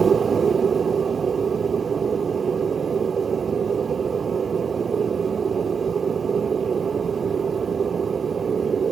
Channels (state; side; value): quieter; left; 6.2 dB